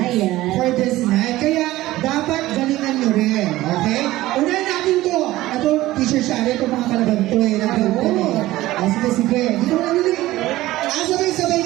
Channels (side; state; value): left; quieter; 16.7 dB